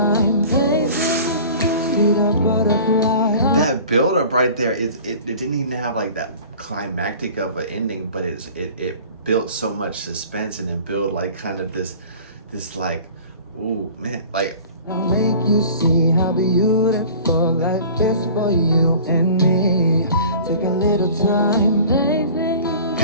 baby, see the butterfly. That build up right there, it didn't even have like that climactic of an ending, but it built so much suspense, and it built like kind of this like, ooh man, like I'll make you see how beautiful life is for you and me. Take a little time, baby.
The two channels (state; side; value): inverted; both; correlation -0.44